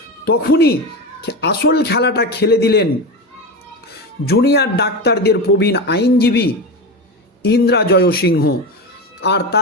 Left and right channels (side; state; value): both; normal; correlation 0.20